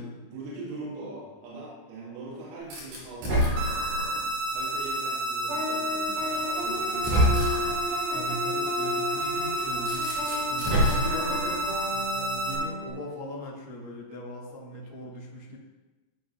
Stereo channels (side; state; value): left; late; 29 ms